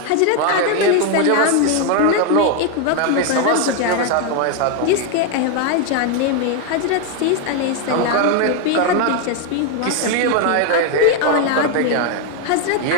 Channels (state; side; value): different; both; correlation 0.01